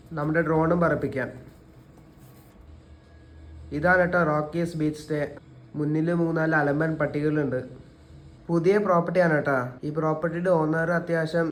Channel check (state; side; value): identical; both; correlation 1.00